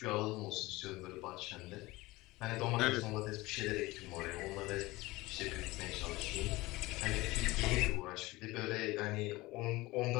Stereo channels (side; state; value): right; quieter; 20.4 dB